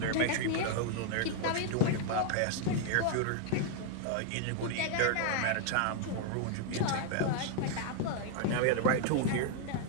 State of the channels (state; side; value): different; both; correlation 0.00